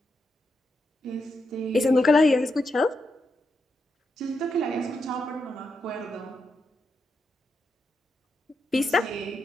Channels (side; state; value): both; normal; correlation 0.84